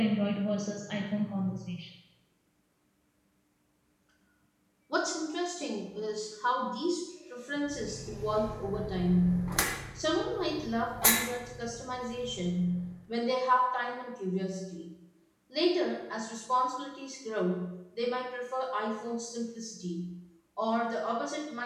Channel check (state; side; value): identical; both; correlation 1.00